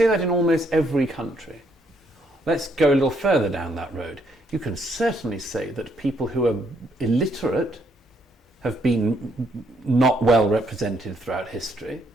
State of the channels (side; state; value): both; normal; correlation 0.71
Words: that in almost every country. Let's go a little further down that road. You can certainly say that people who are illiterate have been not well represented throughout history,